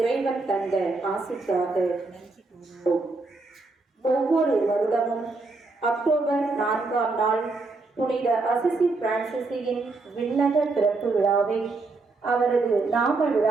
தந்த ஆசிக்காக நன்றி கூறுவோம். ஒவ்வொரு வருடமும் அக்டோபர் 4ஆம் நாள் புனித அசிசி பிரான்சிஸின் விண்ணக பிறப்பு விழாவை அவரது நாம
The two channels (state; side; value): quieter; left; 3.6 dB